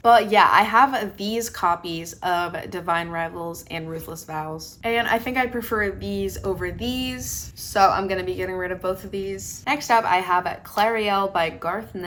But yeah, I have these copies of Divine Rivals and Ruthless Vows. And I think I prefer these over these. So I'm gonna be getting rid of both of these. Next up, I have Clariel by Garth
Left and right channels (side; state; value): both; identical; correlation 1.00